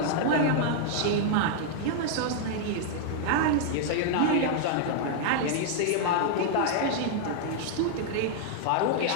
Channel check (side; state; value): both; different; correlation -0.01